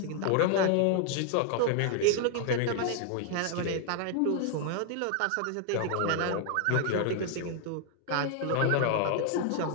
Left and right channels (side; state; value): both; different; correlation 0.00